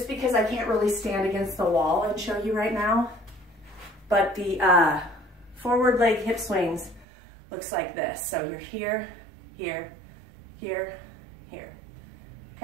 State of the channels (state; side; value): drops out; left; at 7.1 s